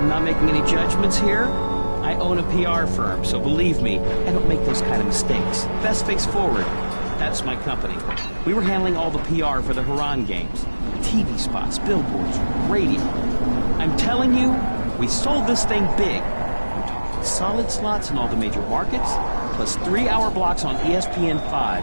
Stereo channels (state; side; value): inverted; both; correlation -1.00